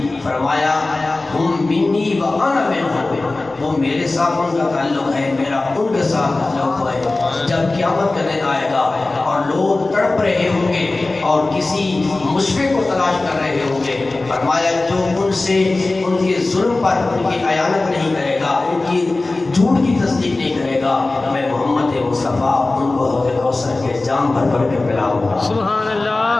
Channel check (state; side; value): quieter; right; 3.2 dB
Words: فرمایا ہم منی وانا منہم، وہ میرے ساتھ ان کا تعلق ہے، میرا ان کے ساتھ تعلق ہے۔ جب قیامت کا دن آئے گا اور لوگ تڑپ رہے ہوں گے اور کسی مشفق کو تلاش کر رہے ہوں گے، فرمایا جو ان سے ان کے ظلم پر ان کی اعانت نہیں کرے گا، ان کی جھوٹ کی تصدیق نہیں کرے گا، میں محمد مصطفیٰ ان کو حوض کوثر کے جام بھر کے پلاؤں گا۔ سبحان اللہ۔